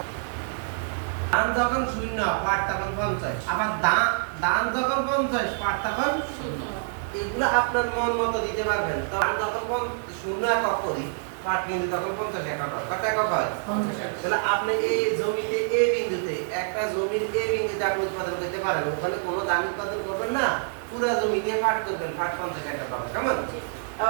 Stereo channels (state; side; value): silent; left; 61 dB below the other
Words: দান যখন 0 পাঠ তখন 50, আবার দান যখন 50 পাঠ তখন 0। এগুলো আপনার মন মতো দিতে পারবেন। দান যখন 0 একক করি, পাঠ কিন্তু তখন 50 একক হয়। কত একক হয়? 50। তাহলে আপনি এই জমিতে এ বিন্দুতে, একটা জমির এ বিন্দুতে আপনি উৎপাদন করতে পারেন, ওখানে কোনো দান উৎপাদন করবেন না, পুরো জমিতে পাঠ করবেন, পাঠ 50 একক হবে। কেমন?